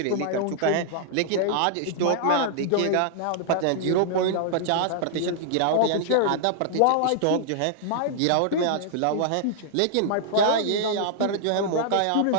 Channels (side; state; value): both; different; correlation -0.01